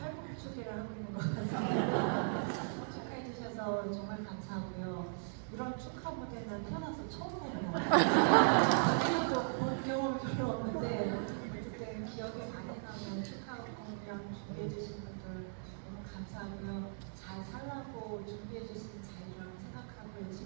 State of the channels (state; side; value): silent; left; digital silence